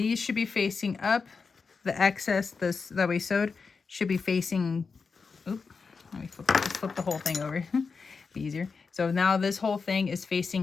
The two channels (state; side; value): quieter; right; 5.0 dB